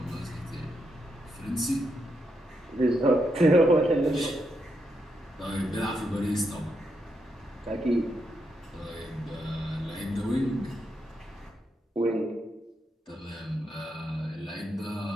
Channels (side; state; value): both; normal; correlation 0.81